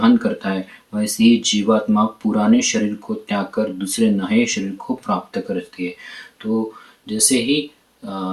करता है, वैसे ही जीवात्मा पुराने शरीर को त्याग कर दूसरे नए शरीर को प्राप्त करती है। तो जैसे ही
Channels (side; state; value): both; identical; correlation 1.00